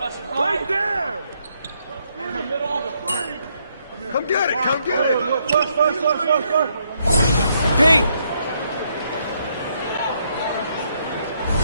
Right there. In the middle of the frame. Come get it. Come get it. Pete.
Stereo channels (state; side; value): inverted; both; correlation -0.74